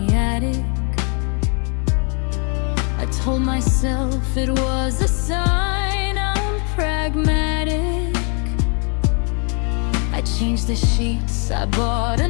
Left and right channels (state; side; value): quieter; right; 38.6 dB